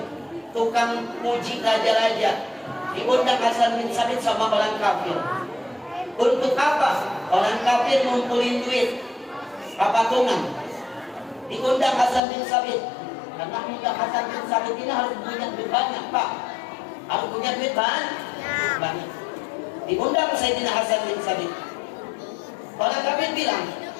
tukang puji raja-raja. Diundang Hasan bin Sabit sama orang kafir. Untuk apa? Orang kafir ngumpulin duit patungan. Diundang Hasan bin Sabit. Karena undang Hasan bin Sabit ini harus punya duit banyak, Pak. Harus punya duit banyak. Diundang Sayyidina Hasan bin Sabit. Orang kafir bilang,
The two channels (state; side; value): drops out; right; at 12.2 s